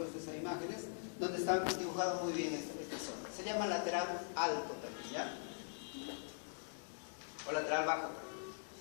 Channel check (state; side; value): silent; right; digital silence